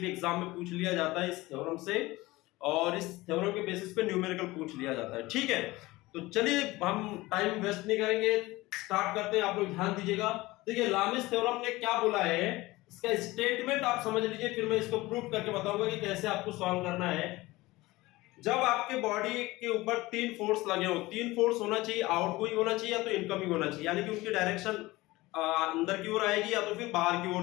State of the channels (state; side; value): quieter; right; 19.9 dB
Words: एग्जाम में पूछ लिया जाता है इस थ्योरम से, और इस थ्योरम के बेसिस पे न्यूमेरिकल पूछ लिया जाता है। ठीक है, तो चलिए हम टाइम वेस्ट नहीं करेंगे, स्टार्ट करते हैं। आप लोग ध्यान दीजिएगा। देखिए लामिस थ्योरम ने क्या बोला है, इसका स्टेटमेंट आप समझ लीजिए, फिर मैं इसको प्रूव करके बताऊंगा कि कैसे आपको सॉल्व करना है। जब आपके बॉडी के ऊपर तीन फोर्स लगे हो, तीन फोर्स होना चाहिए, आउटगोइंग होना चाहिए या तो इनकमिंग होना चाहिए, यानी कि उनकी डायरेक्शन अंदर की ओर आएगी या तो फिर बाहर की